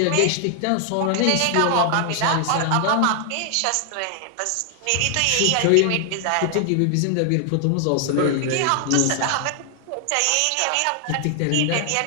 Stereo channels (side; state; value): both; different; correlation 0.00